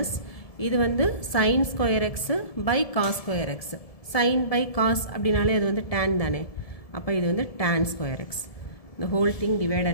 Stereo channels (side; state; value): right; late; 1.7 ms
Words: இது வந்து sine square x by cos square x. Sine by cos அப்படின்னாலே அது வந்து டேன் தானே, அப்போ இது வந்து tan square x. the whole thing